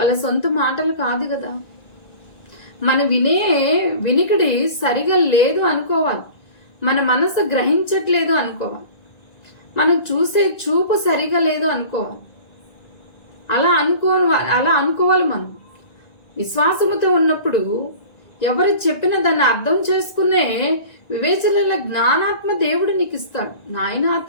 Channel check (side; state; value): right; late; 1.9 ms